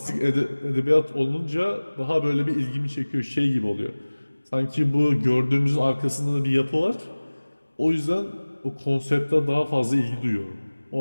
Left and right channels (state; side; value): inverted; both; correlation -1.00